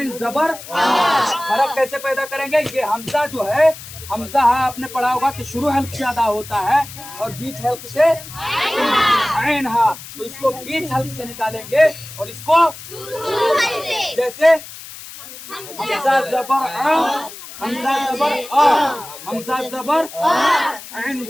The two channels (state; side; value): noise; left; hiss, 14 dB below the sound